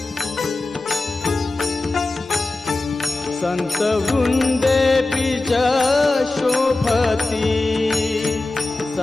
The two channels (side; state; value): right; quieter; 3.0 dB